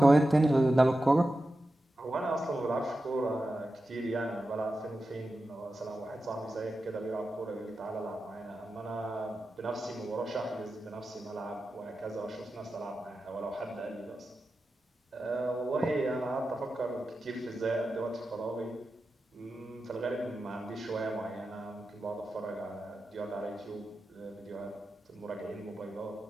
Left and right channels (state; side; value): normal; both; correlation 0.92